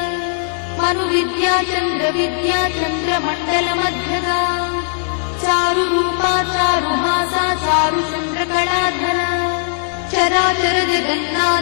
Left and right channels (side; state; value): right; silent; 68 dB below the other